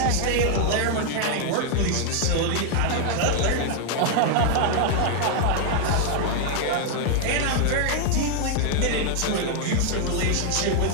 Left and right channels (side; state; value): both; different; correlation 0.00